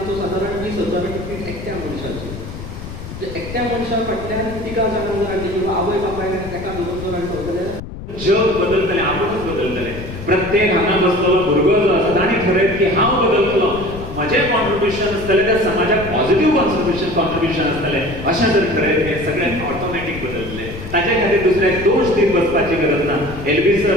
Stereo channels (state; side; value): noise; left; rumble, 10 dB below the sound